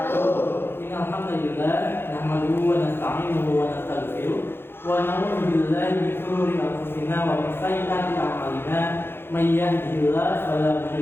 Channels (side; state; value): right; late; 0.11 ms